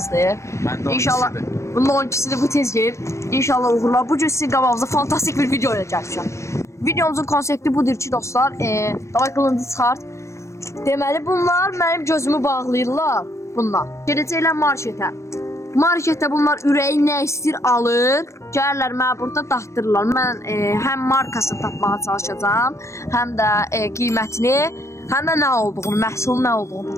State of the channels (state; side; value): late; right; 0.14 ms